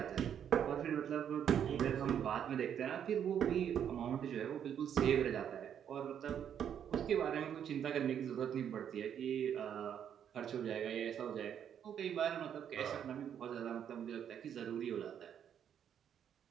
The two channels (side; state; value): left; quieter; 8.9 dB